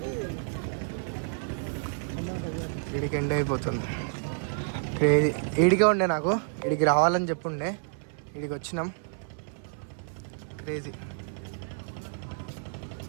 వీడికి ఎండ్ అయిపోతుంది. క్రేజీ. ఈడికే ఉండే నాకు, వీడికి రావాలని చెప్పుండే, వీడికి వచ్చినాం. క్రేజీ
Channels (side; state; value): left; silent; 58 dB below the other